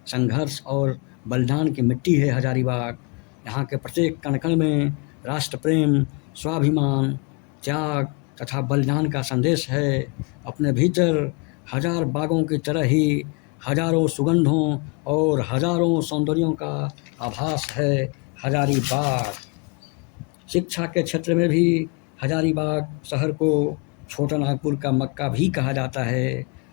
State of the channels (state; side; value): quieter; right; 32.1 dB